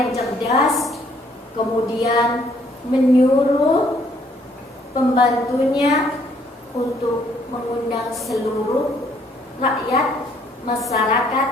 cerdas kemudian menyuruh pembantunya untuk mengundang seluruh rakyat masyarakat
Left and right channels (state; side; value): normal; both; correlation 0.65